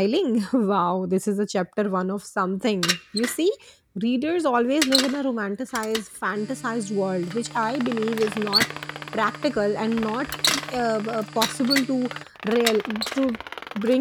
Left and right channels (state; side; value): identical; both; correlation 1.00